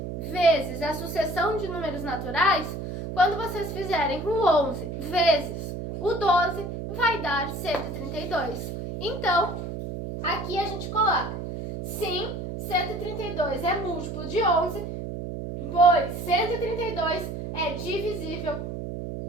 vezes a sucessão de números naturais, quando vocês fizerem o 11 vezes o 12, vai dar 132. Então, aqui a gente coloca, sim, 132 é múltiplo de 11, pois 132 é divisível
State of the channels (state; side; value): noise; right; hum, 6 dB below the sound